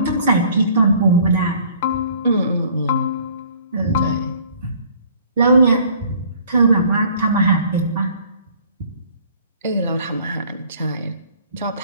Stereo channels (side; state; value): both; inverted; correlation -0.55